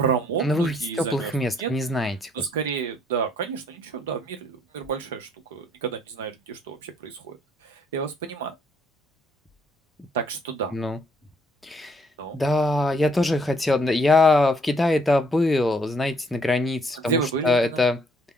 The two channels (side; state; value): both; normal; correlation 0.66